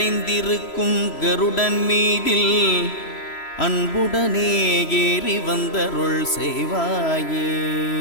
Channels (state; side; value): late; right; 3.1 ms